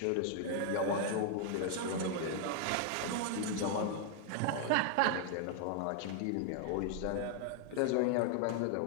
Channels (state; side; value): different; both; correlation 0.00